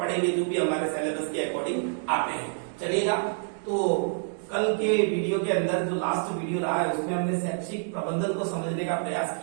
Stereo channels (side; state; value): left; silent; digital silence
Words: जो भी हमारे सिलेबस के अकॉर्डिंग आते हैं। चलिएगा, तो कल के वीडियो के अंदर जो लास्ट वीडियो रहा है उसमें हमने शैक्षिक प्रबंधन को समझने का प्रयास